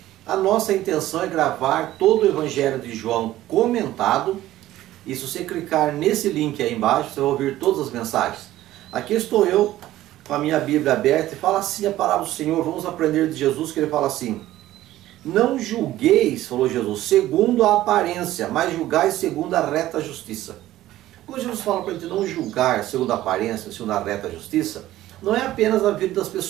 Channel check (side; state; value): left; quieter; 14.8 dB